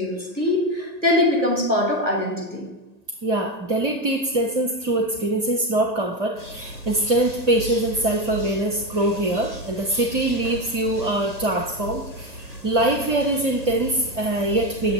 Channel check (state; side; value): late; left; 1.8 ms